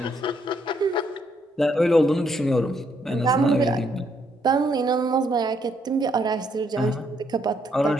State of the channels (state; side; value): normal; both; correlation 0.73